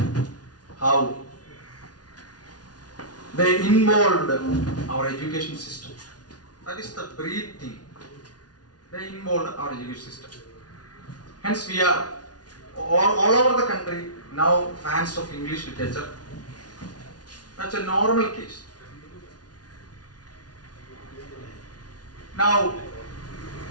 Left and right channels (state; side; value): late; right; 0.69 ms